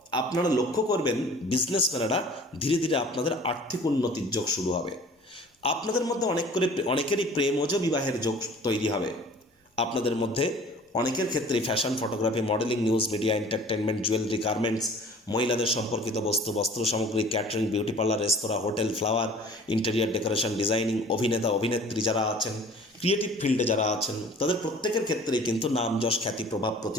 আপনারা লক্ষ্য করবেন বিজনেসম্যানেরা ধীরে ধীরে আপনাদের আর্থিক উন্নতির যোগ শুরু হবে। আপনাদের মধ্যে অনেকেরই প্রেমজ বিবাহের যোগ তৈরি হবে। আপনাদের মধ্যে অনেকের ক্ষেত্রেই fashion, photography, modelling, news, media, entertainment, jewellery, garments, মহিলাদের সম্পর্কিত বস্তু, বস্ত্র সামগ্রী, ক্যাটারিং, বিউটি পার্লার, রেস্তোরাঁ, hotel, flower, interior decoration, designing, অভিনেতা, অভিনেত্রী যারা আছেন, ক্রিয়েটিভ ফিল্ডে যারা আছেন, তাদের প্রত্যেকের ক্ষেত্রেই কিন্তু নাম, যশ, খ্যাতি, প্রভাব,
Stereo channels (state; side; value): normal; both; correlation 0.47